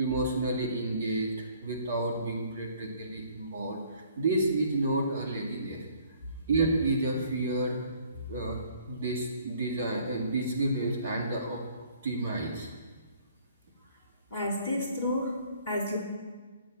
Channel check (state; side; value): inverted; both; correlation -0.58